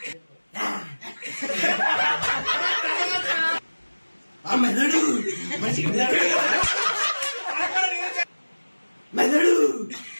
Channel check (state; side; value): inverted; both; correlation -1.00